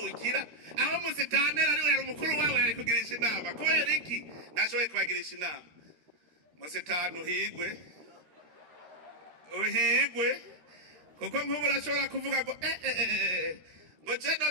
aho musitanteri ari we yari umukuru wabo yari kugirisha inama kubera iki ntashoboye kubagirisha inama musitani uhigwe kuko nk'ubu urashobora kuvuga ngo ngo je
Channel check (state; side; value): late; left; 13 ms